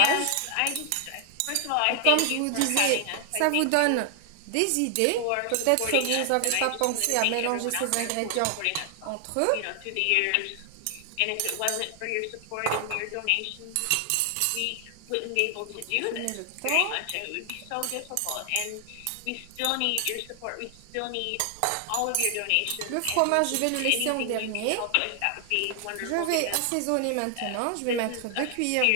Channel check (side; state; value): both; different; correlation 0.00